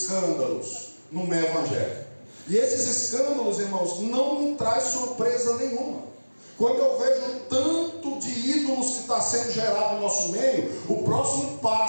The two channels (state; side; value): inverted; both; correlation -1.00